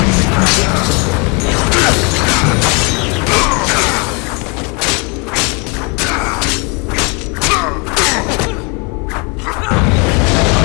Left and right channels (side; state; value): right; quieter; 32.0 dB